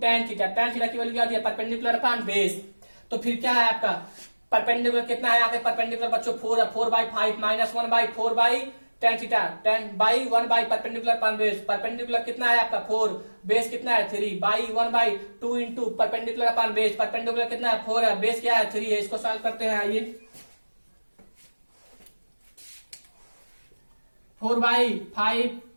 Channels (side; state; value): both; inverted; correlation -1.00